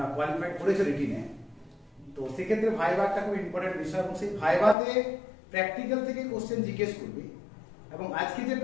কোয়ালিফাইড করেছো রিটিনে, তো সেক্ষেত্রে ভাইভা একটা খুব ইম্পর্টেন্ট বিষয় এবং সেই ভাইভাতে প্র্যাকটিক্যাল থেকে কোশ্চেন জিজ্ঞেস করবে। এবং আজকে যে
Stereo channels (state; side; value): drops out; right; at 4.8 s